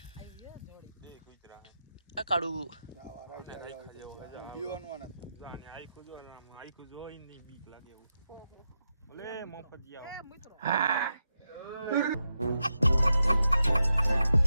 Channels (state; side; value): inverted; both; correlation -0.87